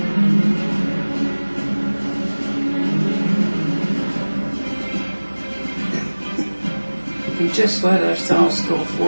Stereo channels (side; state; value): both; inverted; correlation -1.00